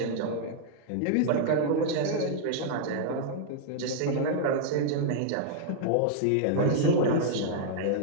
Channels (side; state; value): both; different; correlation -0.01